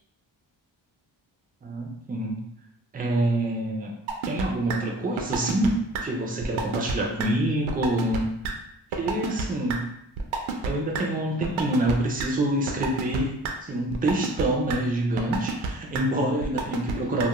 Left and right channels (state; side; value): normal; both; correlation 0.49